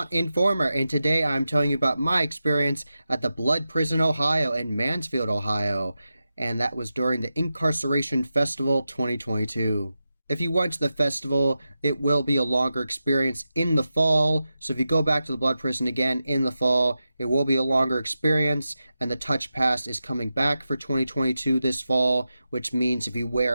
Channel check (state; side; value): inverted; both; correlation -0.91